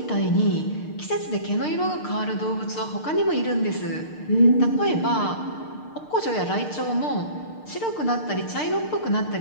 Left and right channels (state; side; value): late; right; 6.6 ms